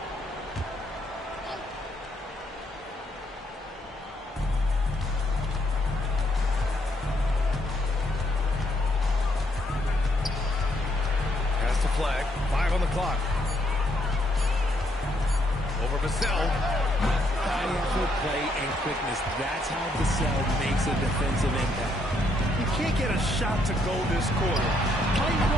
Pass to Flag. 5 on the clock. Over Vassell. High effort play and quickness. That's how Vassell makes a defensive impact. You can't get a shot to go this quarter. How do you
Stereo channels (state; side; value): normal; both; correlation 0.73